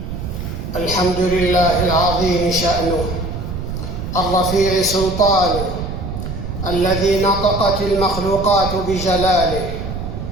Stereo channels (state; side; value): noise; right; rumble, 6 dB below the sound